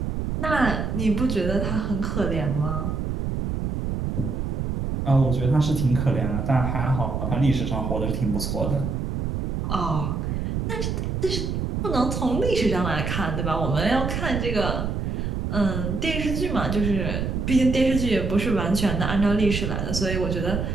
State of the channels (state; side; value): noise; right; rumble, 2 dB below the sound